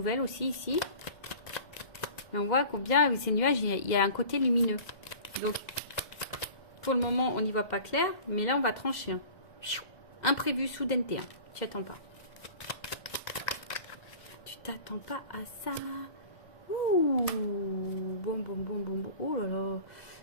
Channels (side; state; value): right; late; 2.0 ms